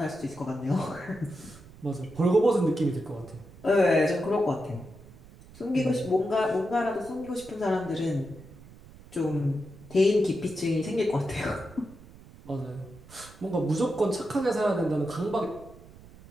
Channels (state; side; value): noise; right; rumble, 21 dB below the sound